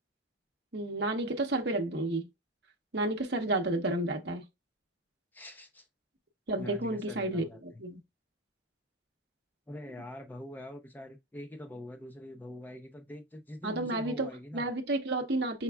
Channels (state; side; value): normal; both; correlation 0.17